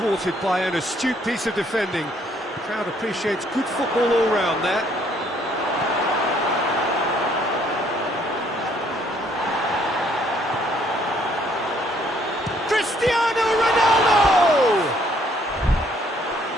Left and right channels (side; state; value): both; normal; correlation 0.65